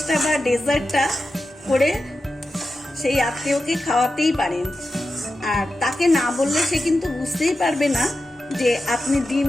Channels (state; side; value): normal; both; correlation 0.91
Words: বা ডেজার্টটা করে সেই আত্মীয়কে খাওয়াতেই পারেন। আর তাকে না বললে সে কিন্তু বুঝতেই পারবে না যে আপনি ডিম